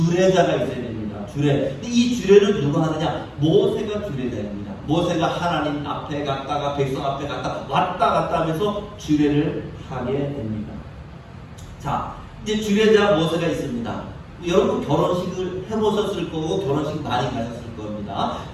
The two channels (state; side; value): identical; both; correlation 1.00